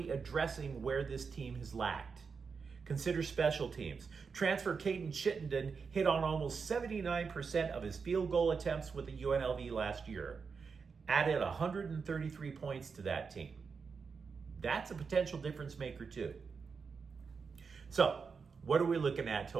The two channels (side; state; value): left; quieter; 5.4 dB